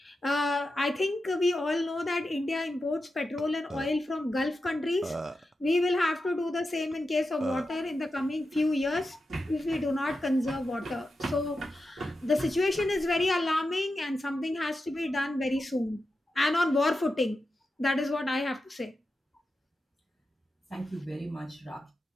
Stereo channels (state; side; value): normal; both; correlation 0.90